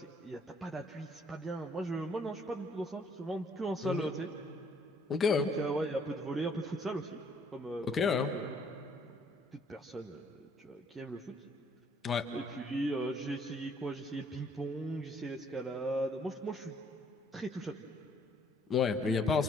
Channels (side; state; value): both; normal; correlation 0.64